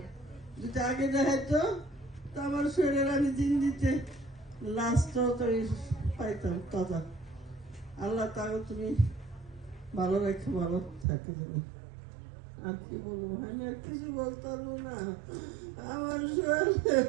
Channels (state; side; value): drops out; left; at 11.1 s